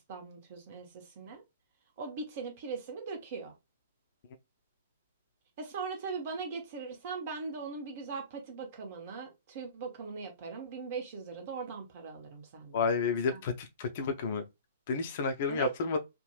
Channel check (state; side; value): inverted; both; correlation -0.38